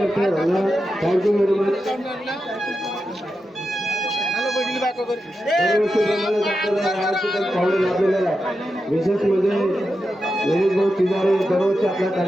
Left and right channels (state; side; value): normal; both; correlation 0.89